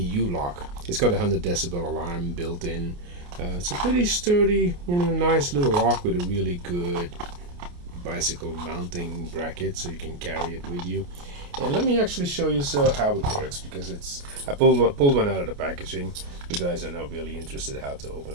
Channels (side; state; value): left; late; 28 ms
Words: It's got a 100 decibel alarm built in. It's a pretty sturdy, nice little lock with a really good bicycle mounting bracket, so you can carry it with you. And let me actually show you how it works, because I pulled one out of the packaging. You guys are not really interested how to open